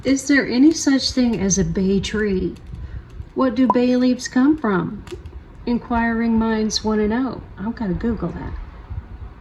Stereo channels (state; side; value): identical; both; correlation 1.00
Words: Is there any such thing as a bay tree? What do bay leaves come from? Inquiring minds want to know. I've got to Google that.